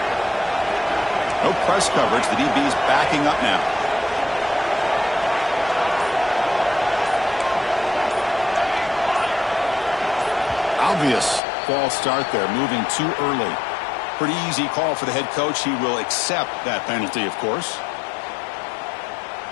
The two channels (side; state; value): right; drops out; at 11.4 s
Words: No press coverage. The DB's backing up now. Obvious false start there, moving too early. Pretty easy call for the head coach. He will accept that penalty, of course.